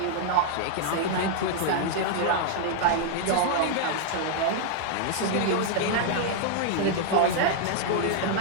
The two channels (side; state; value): both; different; correlation 0.00